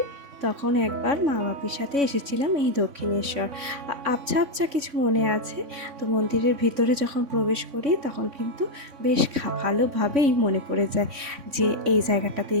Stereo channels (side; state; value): left; late; 3.5 ms